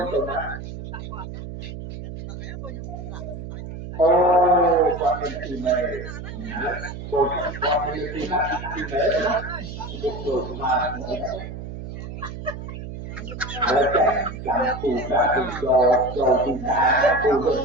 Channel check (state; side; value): noise; right; hum, 9 dB below the sound